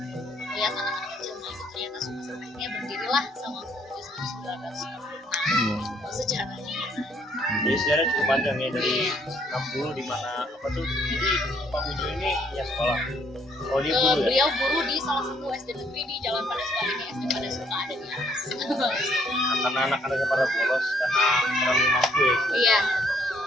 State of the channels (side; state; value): both; normal; correlation 0.67